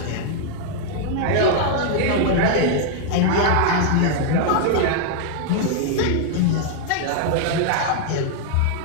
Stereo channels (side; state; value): both; different; correlation 0.00